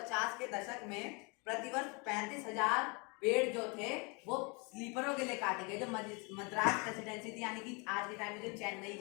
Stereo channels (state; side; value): quieter; right; 30.9 dB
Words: के दशक में प्रतिवर्ष 35,000 पेड़ जो थे वो स्लीपरों के लिए काटे गए। जो मद्रास प्रेसिडेंसी थी, यानी कि आज के टाइम में जो चेन्नई